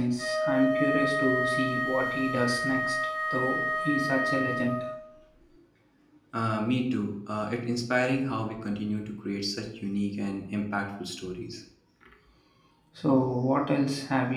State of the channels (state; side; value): identical; both; correlation 1.00